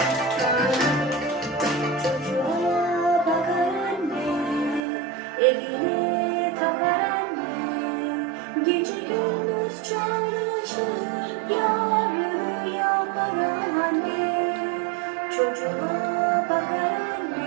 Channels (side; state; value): left; drops out; at 4.8 s